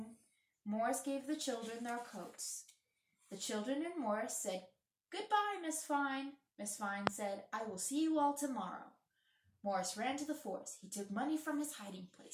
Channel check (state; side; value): identical; both; correlation 1.00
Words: Morris gave the children their coats. The children and Morris said, goodbye, Miss Fine. Miss Fine said, I will see you all tomorrow. Morris ran to the forest. He took money from his hiding